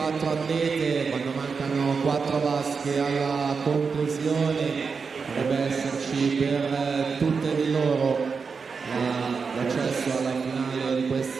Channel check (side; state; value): left; quieter; 5.2 dB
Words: atlete. Quando mancano 4 vasche alla conclusione dovrebbe esserci per tutte di loro l'accesso alla finale di